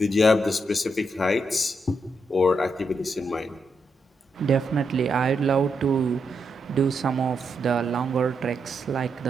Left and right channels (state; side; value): normal; both; correlation 0.82